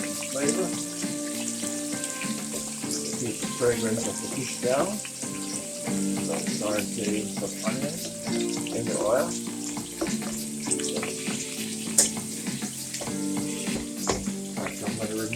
Flavor. Keep the fragrance of the fish down. So sauteing some onions in the oil. Alright, so I'm going to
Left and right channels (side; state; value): both; identical; correlation 1.00